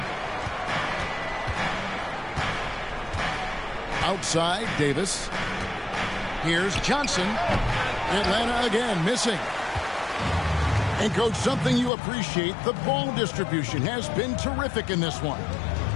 Outside, Davis. Here's Johnson. Atlanta again missing. And, Coach, something you appreciate, the ball distribution has been terrific in this one.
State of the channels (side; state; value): right; drops out; at 11.9 s